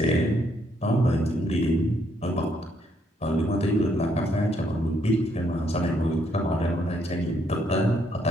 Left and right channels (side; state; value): both; normal; correlation 0.72